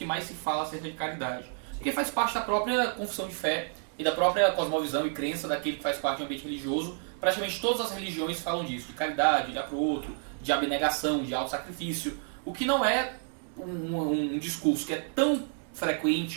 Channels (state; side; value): silent; left; 56 dB below the other